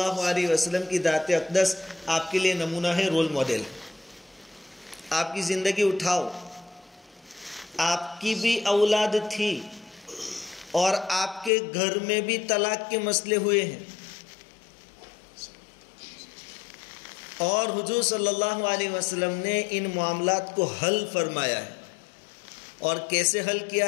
علیہ وسلم کی ذات اقدس آپ کے لیے نمونہ ہے، رول ماڈل۔ آپ کی زندگی اٹھاؤ، آپ کی بھی اولاد تھی اور آپ کے گھر میں بھی طلاق کے مسئلے ہوئے ہیں، اور حضور صلی اللہ علیہ وسلم نے ان معاملات کو حل فرمایا ہے، اور کیسے حل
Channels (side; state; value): right; drops out; at 11.5 s